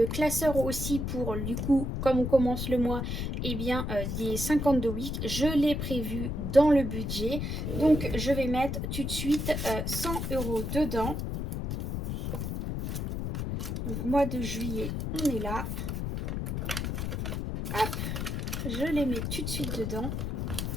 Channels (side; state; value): left; noise; rumble, 2 dB below the sound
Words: classeur aussi pour, du coup, comme on commence le mois, eh bien des 52 weeks. Je l'ai prévu dans le budget. Donc je vais mettre tout de suite 100 € dedans. Donc mois de juillet, on est là. Hop, je les mets tout de suite dedans.